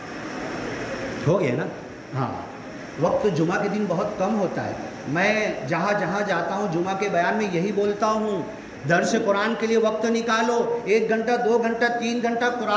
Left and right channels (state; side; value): identical; both; correlation 1.00